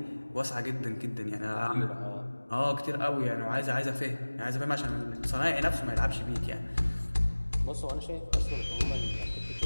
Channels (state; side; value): inverted; both; correlation -1.00